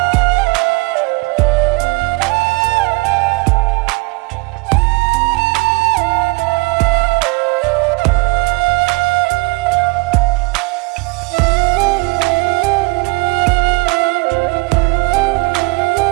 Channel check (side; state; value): left; quieter; 27.2 dB